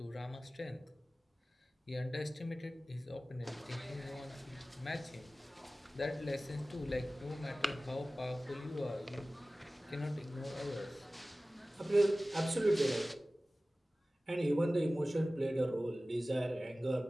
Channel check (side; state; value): both; normal; correlation 0.97